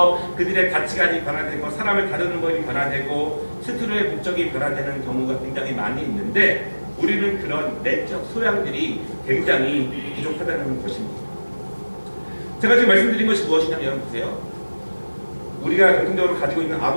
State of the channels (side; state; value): both; inverted; correlation -1.00